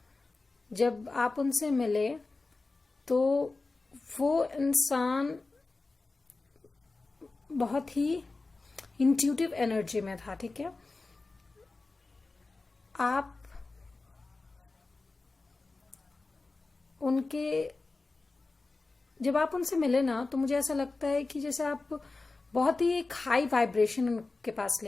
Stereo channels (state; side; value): quieter; right; 3.5 dB